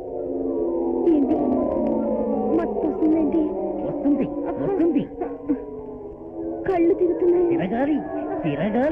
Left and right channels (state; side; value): identical; both; correlation 1.00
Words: ఏంటి మత్తు వస్తుందేంటి? వస్తుంది వస్తుంది, కళ్ళు తిరుగుతున్నాయి. తిరగాలి